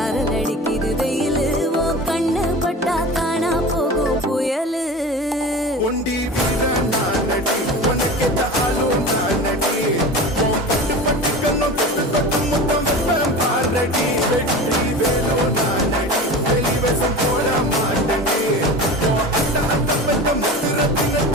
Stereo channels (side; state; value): both; normal; correlation 0.32